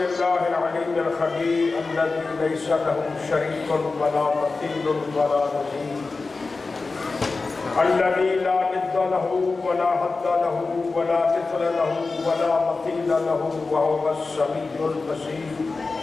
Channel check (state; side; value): quieter; right; 3.9 dB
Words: العليم الخبير الذي ليس له شريك ولا مثيل ولا نظير، الذي لا ند له ولا حد له ولا مثل له ولا مثيل له وهو السميع البصير.